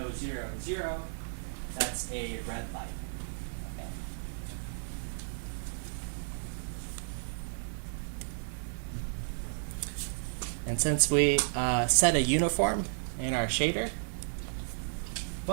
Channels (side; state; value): left; silent; 56 dB below the other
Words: That's a red light. Okay. And since we set a uniform in our shader,